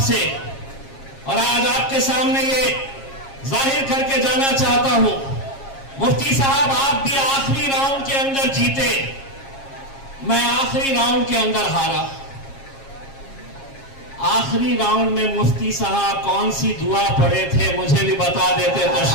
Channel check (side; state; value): right; late; 7.4 ms